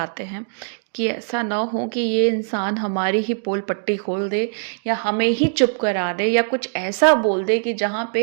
हैं कि ऐसा ना हो कि ये इंसान हमारी ही पोल पट्टी खोल दे या हमें ही चुप करा दे या कुछ ऐसा बोल दे कि जहाँ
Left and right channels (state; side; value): silent; left; digital silence